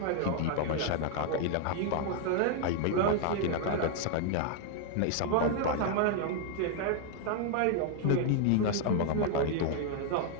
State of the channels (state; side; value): different; both; correlation 0.00